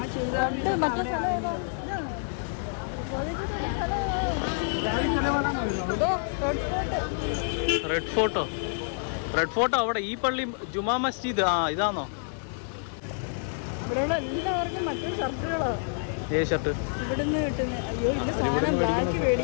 റെഡ് ഫോട്ടോ അവിടെ ഈ പള്ളി ജുമാ മസ്ജിദ്. ഇതാണോ? ഇവിടെയുള്ള എല്ലാവർക്കും മറ്റേ ഷർട്ടുകളോ? ഷർട്ട് ഇവിടുന്ന് കിട്ടുന്ന. അയ്യോ ഇല്ല, സാധനം ബ്ലാക്ക്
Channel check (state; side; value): silent; right; digital silence